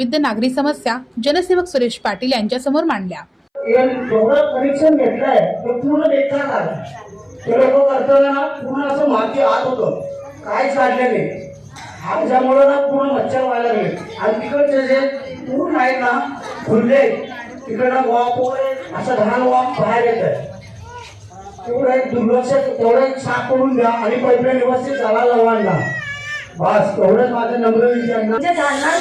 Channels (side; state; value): both; identical; correlation 1.00